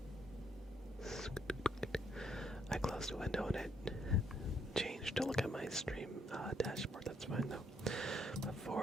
I closed the window and it changed to look at my stream dashboard. That's fine though.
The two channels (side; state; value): both; normal; correlation 0.72